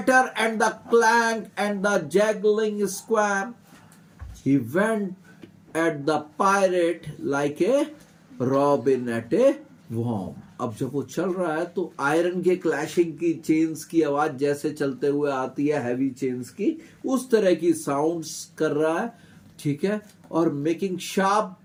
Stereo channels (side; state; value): both; identical; correlation 1.00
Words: and the clank and the jangling squirm, he went at the pirate like a robin at a worm. अब जब वो चल रहा है तो आयरन के क्लैशिंग की, चेन्स की आवाज जैसे चलते हुए आती है, हैवी चेन्स की, उस तरह की साउंड्स कर रहा है, ठीक है, और मेकिंग शार्प